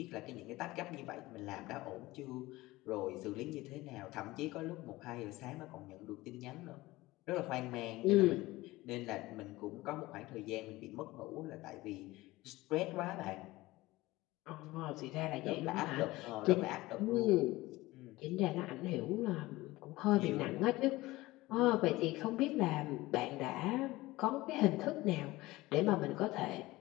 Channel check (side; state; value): right; quieter; 19.2 dB